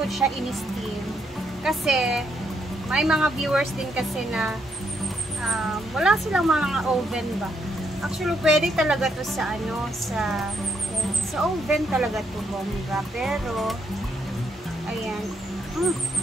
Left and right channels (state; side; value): normal; both; correlation 0.76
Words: siya in-steam. Kasi, may mga viewers din kasi na wala silang mga oven ba. Actually, pwede talaga to sa ano, sa oven talaga to bongga. Pero, ayan.